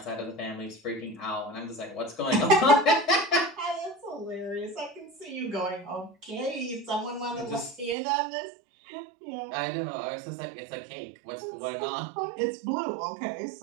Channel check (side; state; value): left; drops out; at 8.0 s